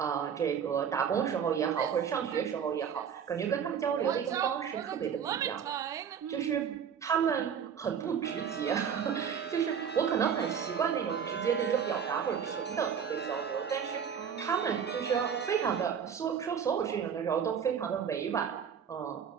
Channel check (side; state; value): left; quieter; 7.6 dB